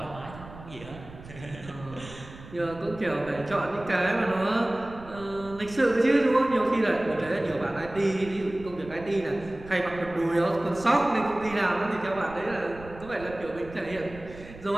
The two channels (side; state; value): right; noise; rumble, 17 dB below the sound